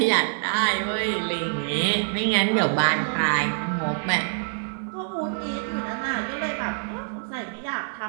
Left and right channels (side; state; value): left; silent; 61 dB below the other